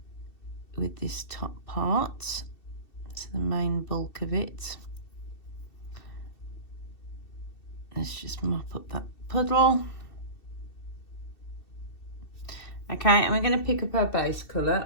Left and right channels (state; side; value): late; right; 2.7 ms